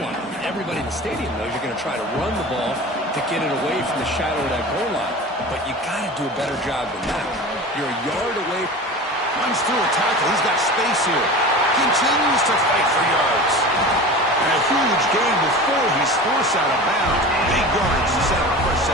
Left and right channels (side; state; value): both; normal; correlation 0.34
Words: line. Everybody in the stadium knows you're going to try to run the ball to get it away from the shadow of that goal line. But you got to do a better job than that. You're a yard away. Runs through a tackle. He's got space here. Continues to fight for yards. And a huge gain before he's forced out of bounds. Big yards to set up a fresh